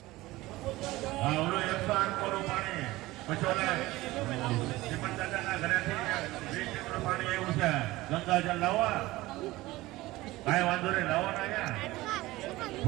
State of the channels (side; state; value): left; quieter; 18.7 dB